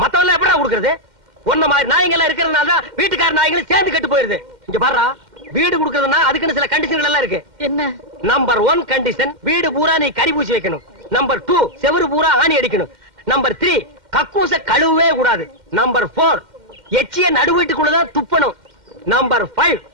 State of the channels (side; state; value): left; late; 2.1 ms